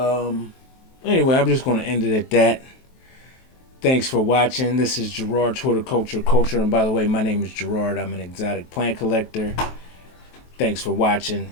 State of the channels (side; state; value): right; late; 23 ms